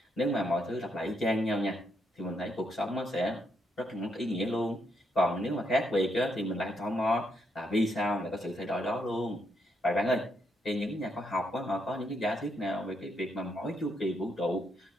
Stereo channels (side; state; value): both; normal; correlation 0.77